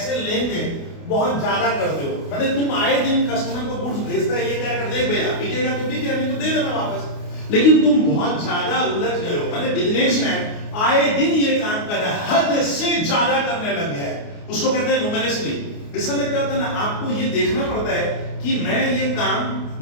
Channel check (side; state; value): right; late; 29 ms